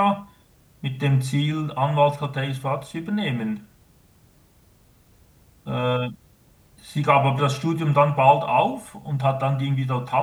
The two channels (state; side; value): identical; both; correlation 1.00